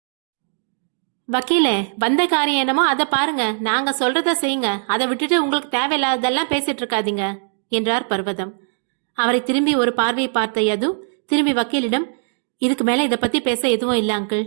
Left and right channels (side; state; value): left; silent; 65 dB below the other